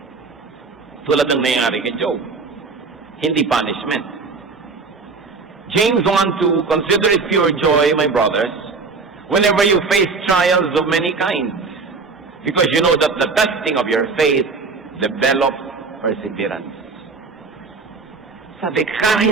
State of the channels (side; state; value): left; quieter; 4.4 dB